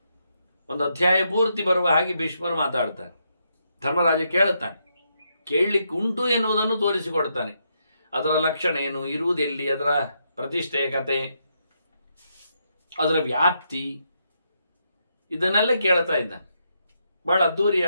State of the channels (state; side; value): inverted; both; correlation -0.79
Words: ಒಂದು ಅಧ್ಯಾಯ ಪೂರ್ತಿ ಬರುವ ಹಾಗೆ ಭೀಷ್ಮರು ಮಾತಾಡ್ತಾರೆ. ಧರ್ಮರಾಜ ಕೇಳುತ್ತಾನೆ, ಕೇಳಲಿಕ್ಕೆ ಉಂಟು ಎನ್ನುವುದನ್ನು ತೋರಿಸಿಕೊಡ್ತಾನೆ. ಅದರ ಲಕ್ಷಣ ಏನು, ಇರುವುದೆಲ್ಲಿ, ಅದರ ಪ್ರತಿಷ್ಠೆಯ ಕತೆ, ಅದರ ವ್ಯಾಪ್ತಿ, ಇದನ್ನೆಲ್ಲ ಕೇಳ್ತಾ ಇದ್ದಾನೆ. ಬಹಳ